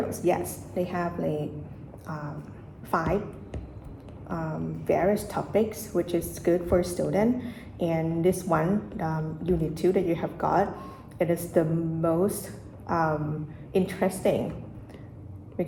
yes, they have 5 various topics, which is good for a student. And this one, unit 2 that you have got, it is the most interesting,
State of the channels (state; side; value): identical; both; correlation 1.00